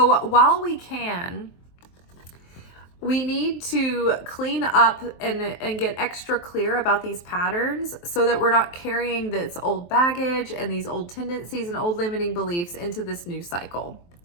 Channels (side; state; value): right; late; 23 ms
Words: while we can, we need to clean up and get extra clear about these patterns so that we're not carrying this old baggage and these old tendencies and old limiting beliefs into this new cycle.